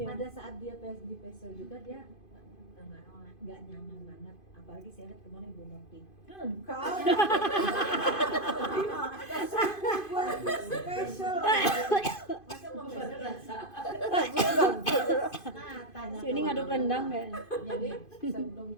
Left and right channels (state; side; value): late; right; 2.5 ms